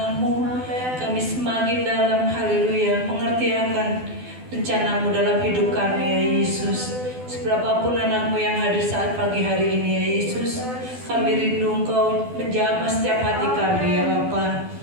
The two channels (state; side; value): late; left; 12 ms